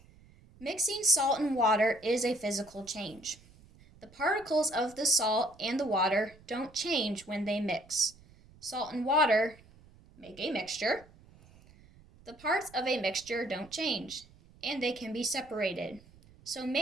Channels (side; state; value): right; noise; rumble, 25 dB below the sound